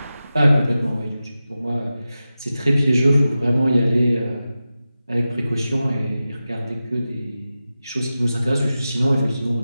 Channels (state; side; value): inverted; both; correlation -0.93